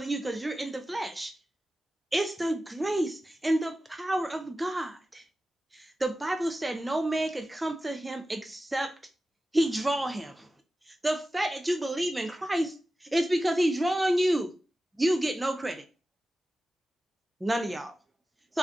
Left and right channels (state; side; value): normal; both; correlation 0.94